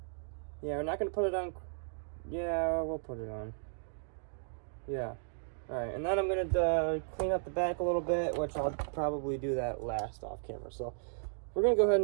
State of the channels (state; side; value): silent; left; digital silence